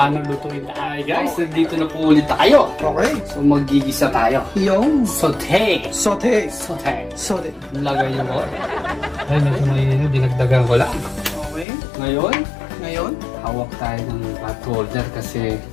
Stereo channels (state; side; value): drops out; right; at 11.7 s